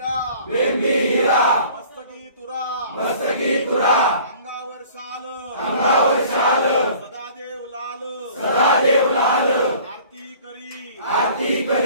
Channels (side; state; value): both; inverted; correlation -0.49